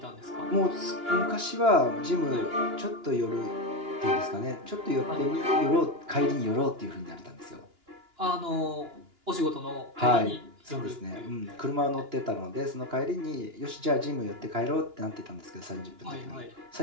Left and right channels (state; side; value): late; left; 2.9 ms